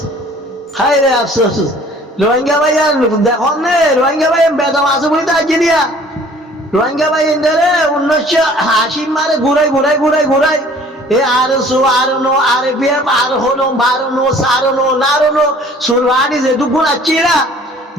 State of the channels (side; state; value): both; normal; correlation 0.52